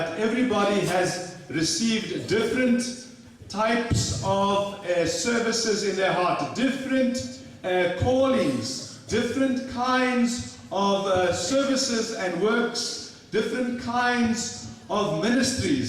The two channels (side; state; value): both; identical; correlation 1.00